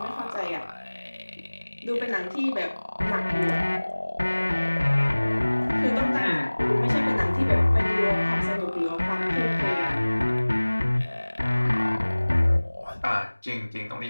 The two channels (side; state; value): both; inverted; correlation -1.00